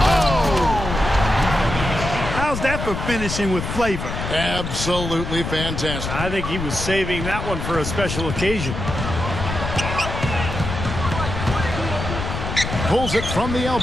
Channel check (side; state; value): left; noise; rumble, 5 dB below the sound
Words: How's that for finishing with flavor? Absolutely fantastic. I think he was saving that one for a special occasion. Pulls it from the